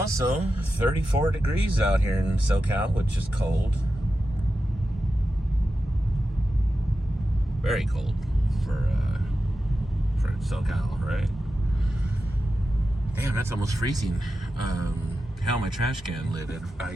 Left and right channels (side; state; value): both; normal; correlation 0.91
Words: 34 degrees out here in SoCal, which is cold. Very cold for SoCal, right? Damn, that's almost freezing. Hell, my trash can lid had